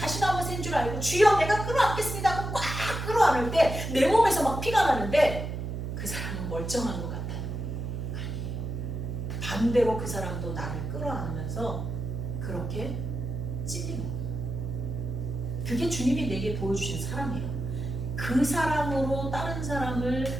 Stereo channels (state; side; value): noise; right; hum, 5 dB below the sound